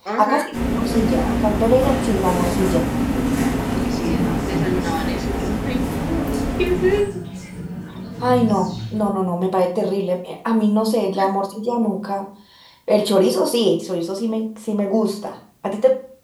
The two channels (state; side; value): identical; both; correlation 1.00